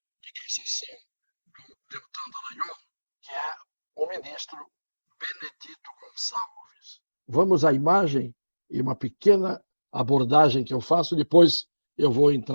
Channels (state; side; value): inverted; both; correlation -1.00